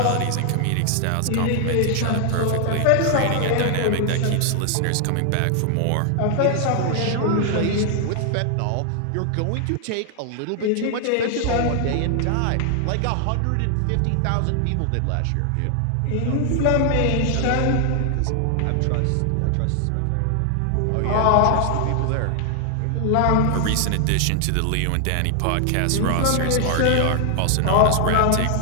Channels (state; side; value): different; both; correlation 0.00